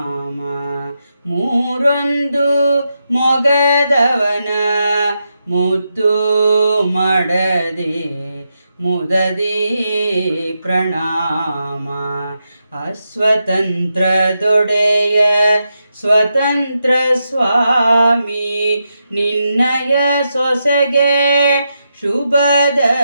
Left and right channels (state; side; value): inverted; both; correlation -0.85